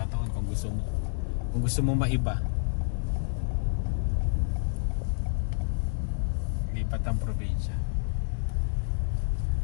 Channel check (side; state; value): right; silent; digital silence